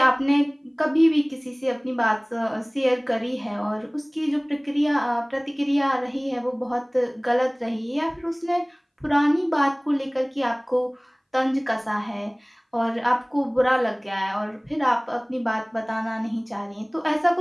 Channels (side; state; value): both; identical; correlation 1.00